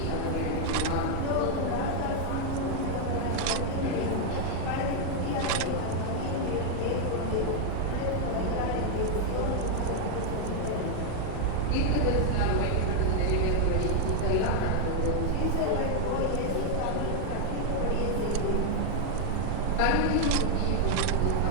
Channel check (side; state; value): both; different; correlation 0.00